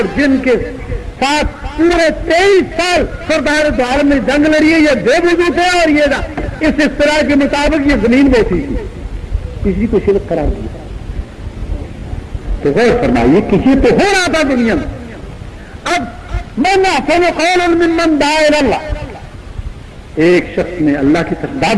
جن کے ساتھ پورے 23 سال سردار دو عالم نے جنگ لڑی ہے, یہ بے وضو تھے اور یہ اس اصطلاح کے مطابق یہ زمین بوسی تھی, کسی کو شرک قرار دیا. تو غور فرمائیے کسی تو ہو رہا تھا دنیا میں. اب من احسن قولا ممن دعا الی اللہ, ایک شخص نے اللہ کی طرف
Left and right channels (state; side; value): identical; both; correlation 1.00